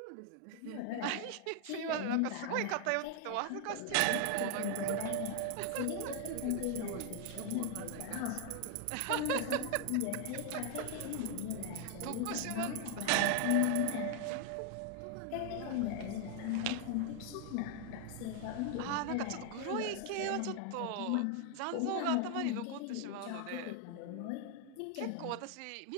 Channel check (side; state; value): both; different; correlation 0.00